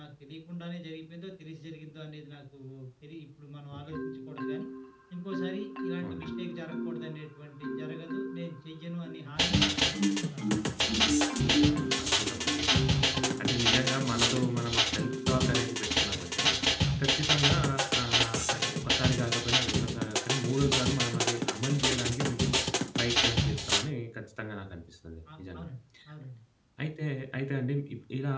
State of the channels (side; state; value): both; identical; correlation 1.00